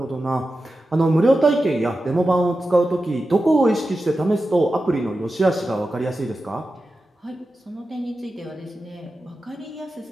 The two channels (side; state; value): both; normal; correlation 0.92